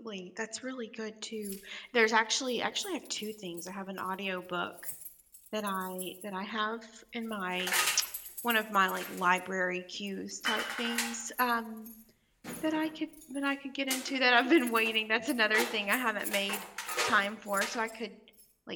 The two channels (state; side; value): identical; both; correlation 1.00